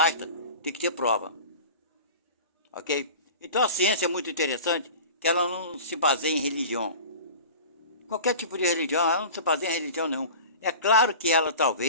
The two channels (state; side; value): inverted; both; correlation -0.38